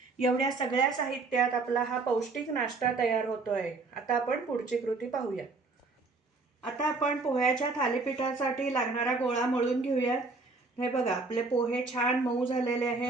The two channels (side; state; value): left; quieter; 3.8 dB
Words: एवढ्या सगळ्या साहित्यात आपला हा पौष्टिक नाश्ता तयार होतो आहे. आता आपण पुढची कृती पाहूया. आता आपण पोह्याच्या थालीपीठासाठी लागणारा गोळा मळून घेऊयात. हे बघा, आपले पोहे छान मऊ झालेले